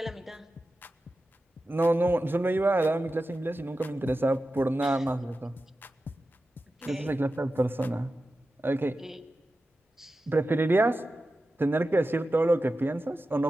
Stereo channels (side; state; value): both; normal; correlation 0.93